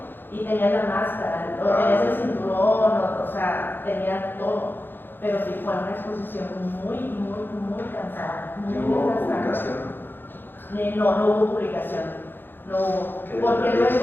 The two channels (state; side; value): late; right; 0.098 ms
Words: y tenías la máscara, o tenías el cinturón, o sea, tenías todo. Pero sí fue una exposición muy cansada. ¿Hubo publicación? No hubo publicación. No hubo. Porque